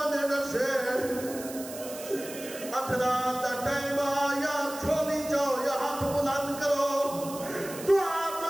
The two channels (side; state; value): right; noise; hiss, 13 dB below the sound